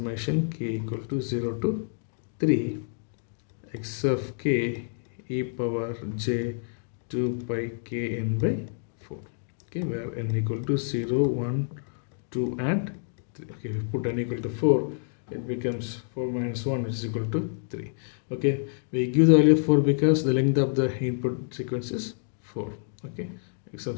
k equal to 0 to 3 x of k e power j 2 pi k n by 4. Okay, where n equal to 0, 1, 2 and 3. Okay, if we put n equal to 4, it becomes 4 minus 1, which is equal to 3. Okay, we give the value of 4 because the length of the input sequence is 4. Okay, x of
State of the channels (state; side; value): silent; right; digital silence